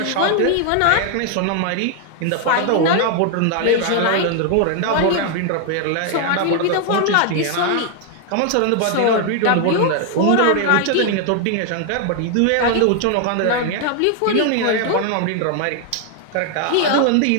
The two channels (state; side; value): different; both; correlation 0.00